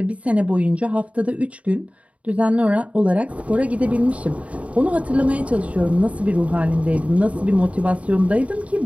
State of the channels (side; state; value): left; late; 0.066 ms